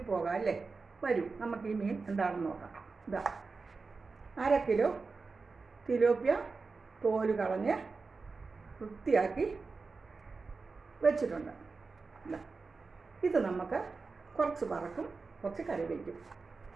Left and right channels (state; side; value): quieter; left; 4.3 dB